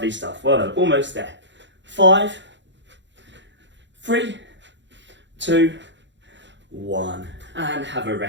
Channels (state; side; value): late; left; 0.53 ms